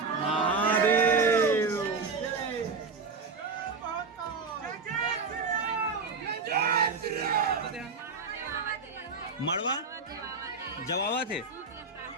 महादेव मड़वा जवावा थे।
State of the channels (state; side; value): quieter; left; 4.4 dB